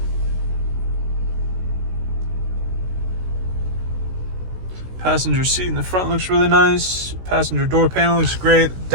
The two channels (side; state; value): left; late; 16 ms